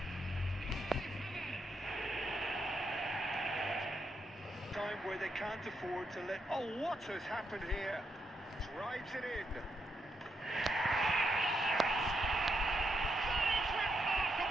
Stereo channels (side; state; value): both; normal; correlation 0.80